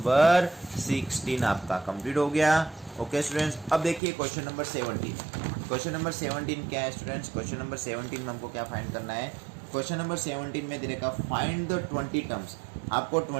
16 आपका कंप्लीट हो गया। ओके स्टूडेंट्स, अब देखिए क्वेश्चन नंबर 17। क्वेश्चन नंबर 17 क्या है स्टूडेंट्स, क्वेश्चन नंबर 17 में हमको क्या फाइंड करना है, क्वेश्चन नंबर 17 में दे रखा फाइंड द 20 टर्म्स, आपको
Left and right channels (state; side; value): drops out; left; at 4.0 s